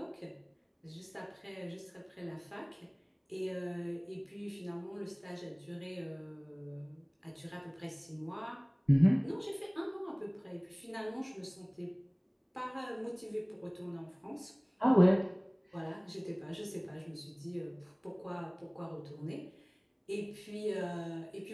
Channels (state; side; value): identical; both; correlation 1.00